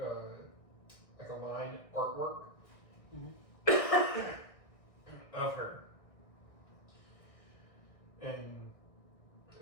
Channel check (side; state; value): right; late; 1.6 ms